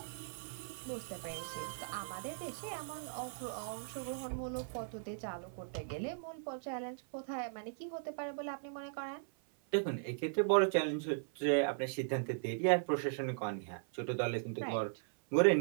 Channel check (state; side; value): silent; left; 52 dB below the other